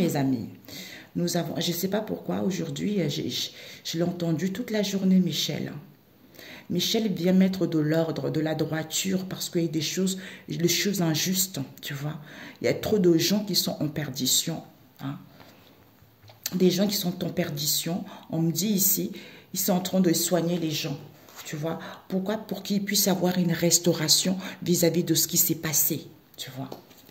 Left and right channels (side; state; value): both; identical; correlation 1.00